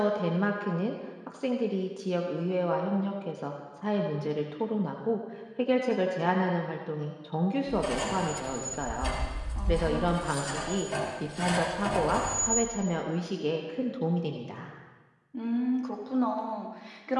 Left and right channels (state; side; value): identical; both; correlation 1.00